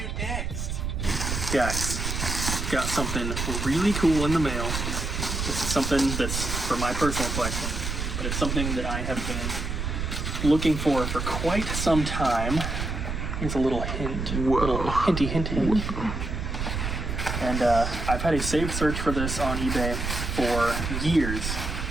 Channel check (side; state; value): right; noise; rumble, 3 dB below the sound